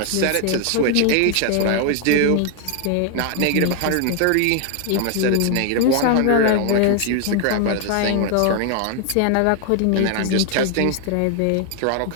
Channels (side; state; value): both; different; correlation 0.01